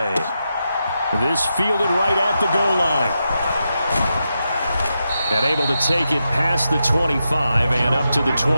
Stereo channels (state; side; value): inverted; both; correlation -0.87